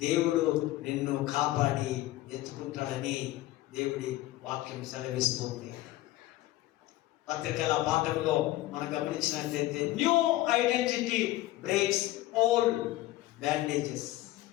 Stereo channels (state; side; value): quieter; right; 16.5 dB